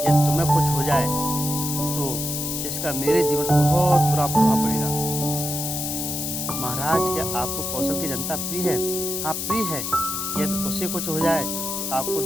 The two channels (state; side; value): noise; left; hiss, 3 dB below the sound